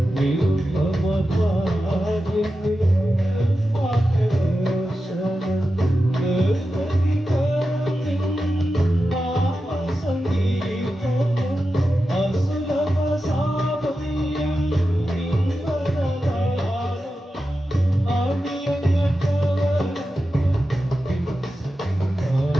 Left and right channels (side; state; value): both; normal; correlation 0.91